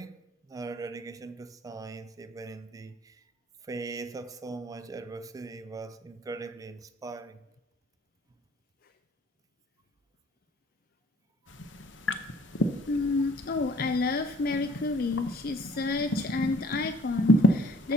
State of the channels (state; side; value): normal; both; correlation 0.57